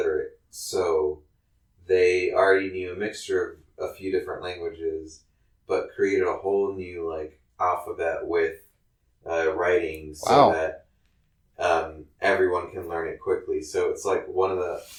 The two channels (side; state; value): both; identical; correlation 1.00